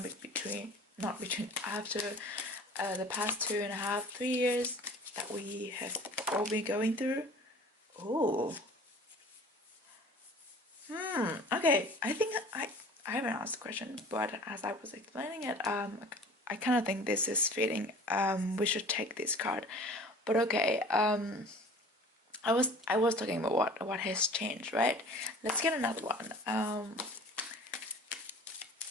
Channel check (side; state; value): both; normal; correlation 0.45